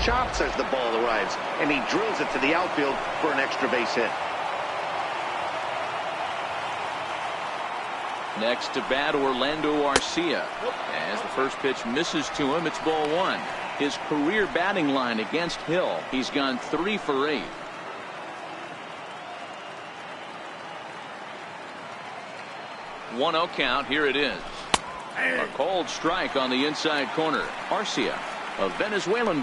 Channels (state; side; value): identical; both; correlation 1.00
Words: chops as the ball arrives. And he drills it to the outfield for an extra base hit. Next to bat, Orlando Arcia. As the first pitch misses to him, it's ball one. His career batting line against Hill, he's gone 3 for 8. One-0 count. Here it is. A cold strike on the inside corner. Arcia, a